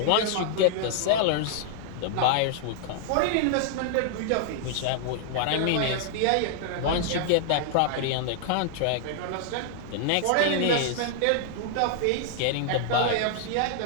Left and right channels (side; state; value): both; different; correlation -0.01